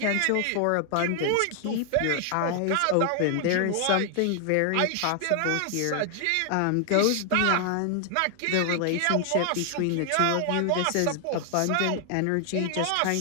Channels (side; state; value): both; different; correlation 0.00